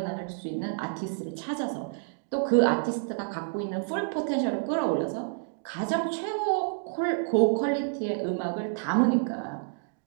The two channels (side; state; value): left; silent; digital silence